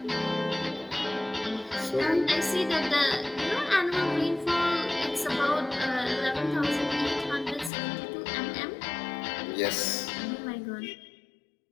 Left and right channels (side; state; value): right; drops out; at 7.7 s